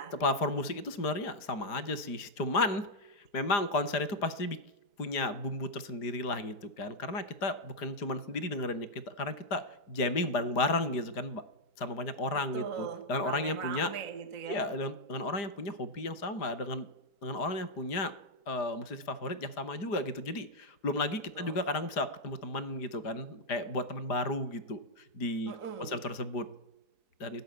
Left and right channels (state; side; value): late; right; 4.9 ms